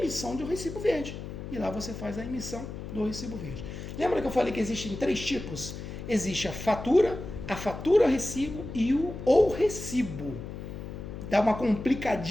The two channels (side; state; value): left; noise; hum, 9 dB below the sound